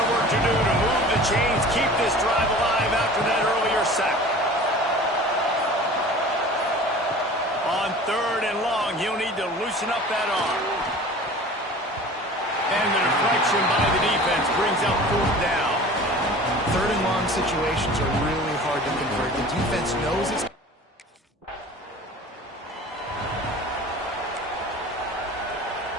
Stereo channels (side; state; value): both; normal; correlation 0.41